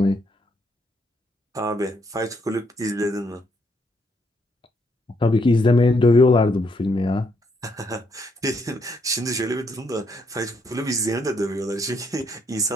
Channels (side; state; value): both; normal; correlation 0.74